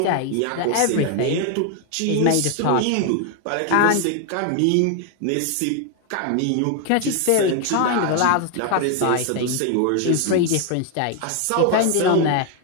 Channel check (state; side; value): different; both; correlation 0.01